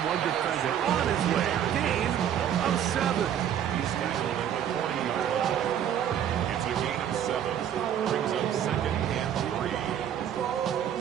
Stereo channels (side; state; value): left; quieter; 9.7 dB